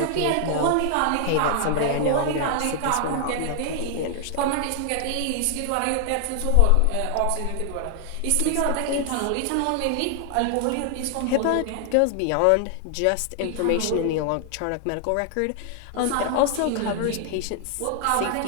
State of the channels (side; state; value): both; different; correlation 0.00